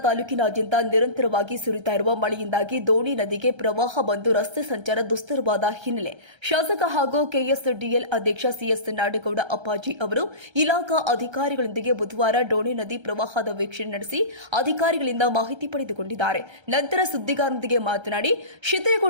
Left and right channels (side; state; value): left; late; 1.3 ms